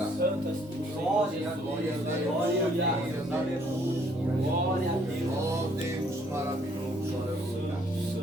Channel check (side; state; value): both; normal; correlation 0.64